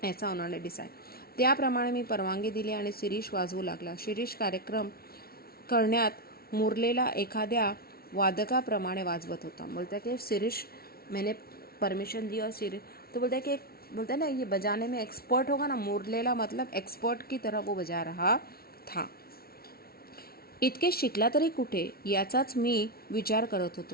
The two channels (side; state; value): right; late; 0.44 ms